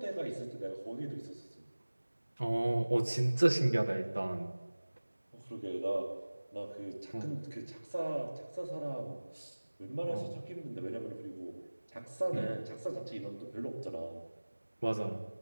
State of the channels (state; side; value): inverted; both; correlation -1.00